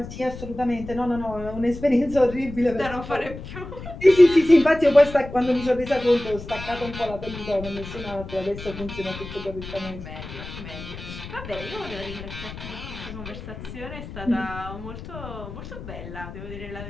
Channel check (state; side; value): noise; left; rumble, 11 dB below the sound